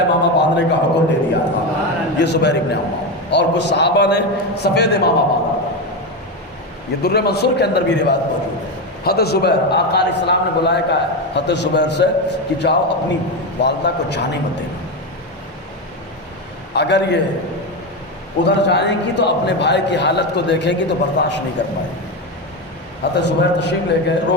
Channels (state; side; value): normal; both; correlation 0.14